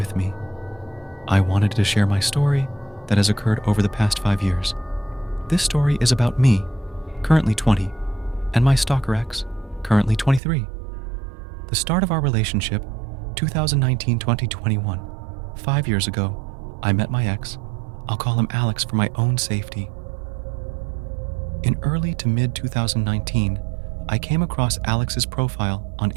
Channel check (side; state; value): left; drops out; at 10.4 s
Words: me. I wanted to share my story that has occurred over the past 5 years. This story is about me, currently 20, and my stalker ex, currently 23. The start of our relationship, 2019-2021. 5 years ago, I met my ex. I'll call him Alex for my own safety. In early to mid 2019, I came across Alex's profile on